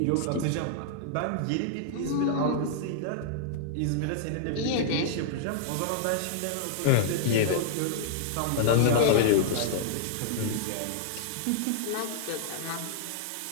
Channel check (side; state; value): both; different; correlation -0.01